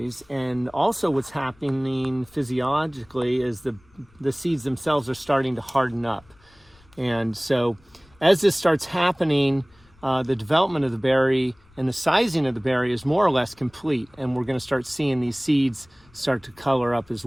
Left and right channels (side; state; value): left; noise; rumble, 29 dB below the sound